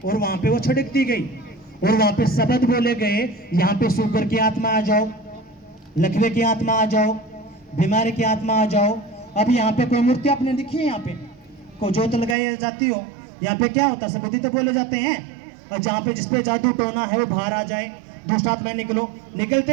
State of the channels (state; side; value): drops out; left; at 12.4 s